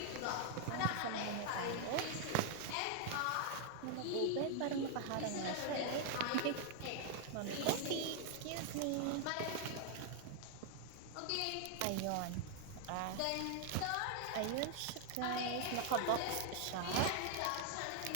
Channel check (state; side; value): different; both; correlation 0.00